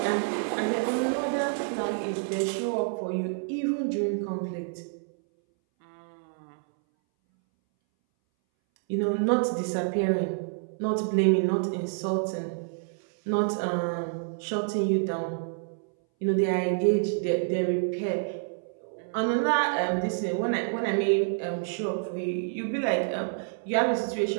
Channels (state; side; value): silent; left; 59 dB below the other